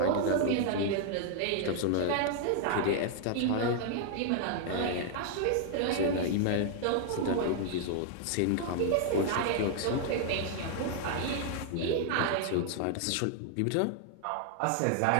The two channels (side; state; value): both; different; correlation 0.00